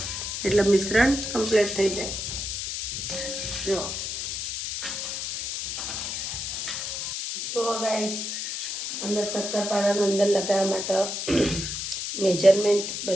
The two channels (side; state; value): left; noise; hiss, 4 dB below the sound